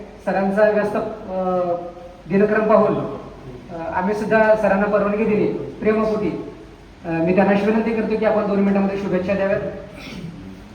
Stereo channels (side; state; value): both; identical; correlation 1.00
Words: सरांचा व्यस्त दिनक्रम पाहून आम्ही सुद्धा सरांना परवानगी दिली प्रेमपोटी. मी त्यांना विनंती करतो की आपण 2 मिनिटांमध्ये शुभेच्छा द्याव्यात.